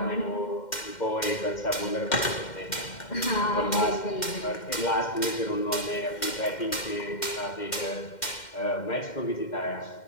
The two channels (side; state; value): right; late; 2.1 ms